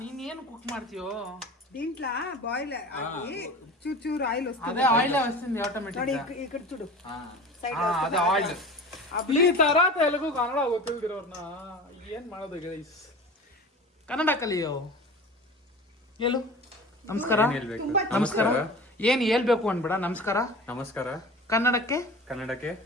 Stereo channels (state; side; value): normal; both; correlation 0.36